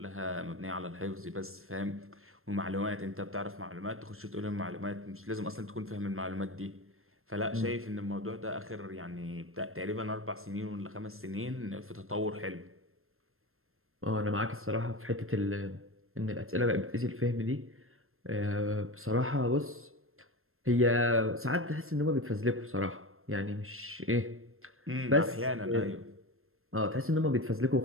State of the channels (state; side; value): late; left; 0.61 ms